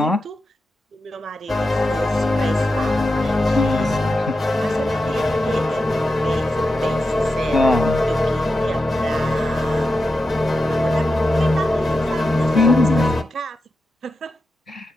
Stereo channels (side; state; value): both; normal; correlation 0.90